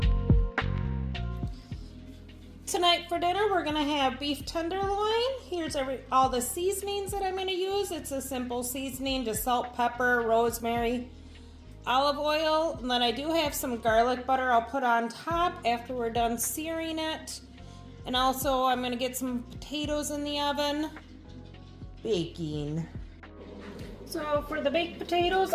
Tonight for dinner we're going to have beef tenderloin. Here's all the seasonings that I'm going to use. It's a simple seasoning, just salt, pepper, rosemary, olive oil, and then I do have some garlic butter I'll put on top after we're done searing it. And also I'm going to get some potatoes in the oven, baking. So for the baked potatoes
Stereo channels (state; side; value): identical; both; correlation 1.00